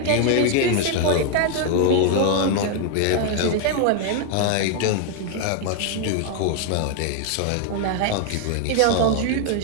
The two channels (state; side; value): different; both; correlation 0.01